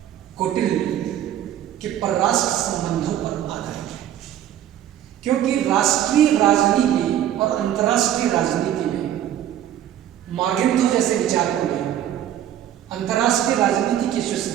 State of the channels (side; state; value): left; quieter; 11.2 dB